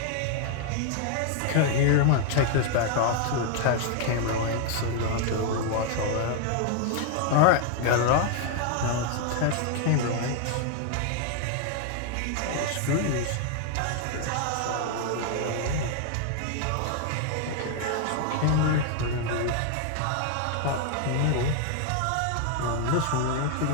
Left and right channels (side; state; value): both; different; correlation 0.00